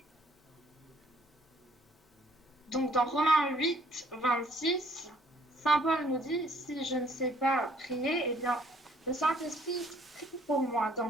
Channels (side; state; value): both; normal; correlation 0.61